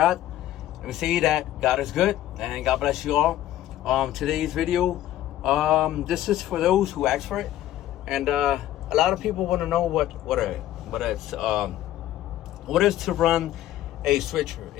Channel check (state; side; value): quieter; right; 13.4 dB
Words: Let me say that God is good, and God bless you all. Today's video, this is for those who asked for it, and a lot of people want to know what is to run a switcher.